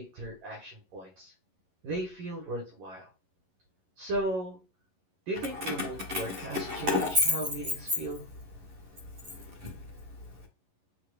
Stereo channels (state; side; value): late; left; 11 ms